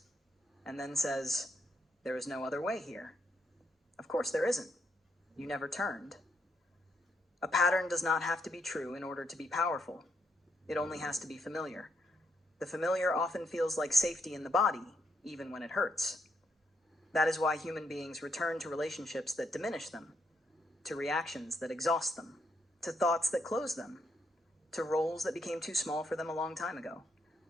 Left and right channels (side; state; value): both; normal; correlation 0.77